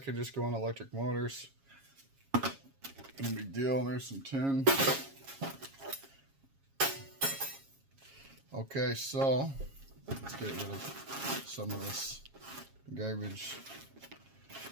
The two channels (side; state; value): left; late; 7.3 ms